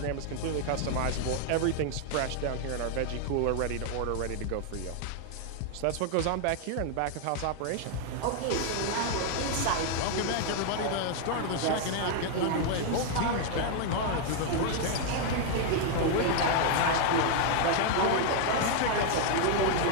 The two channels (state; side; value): different; both; correlation 0.00